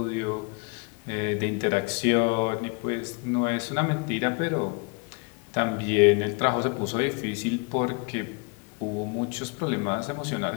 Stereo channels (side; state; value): right; quieter; 32.2 dB